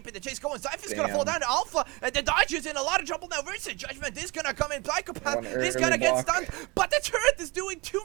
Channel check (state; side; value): quieter; left; 25.8 dB